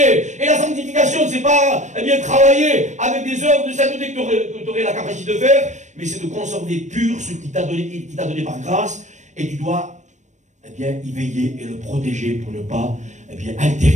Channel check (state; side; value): late; left; 0.35 ms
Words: Et la sanctification, c'est pas, travailler avec des œuvres de sainteté que tu aurais la capacité de faire, mais c'est de conserver pur ce qu'il t'a donné par grâce, et tu dois, y veiller et le protéger pour ne pas,